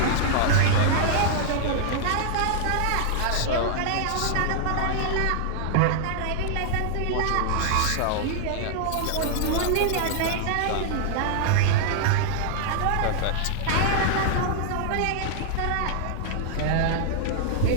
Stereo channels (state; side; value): different; both; correlation -0.01